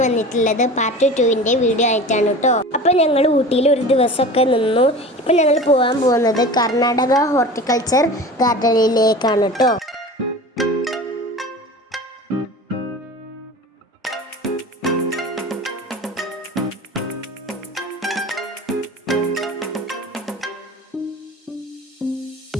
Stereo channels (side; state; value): both; normal; correlation 0.36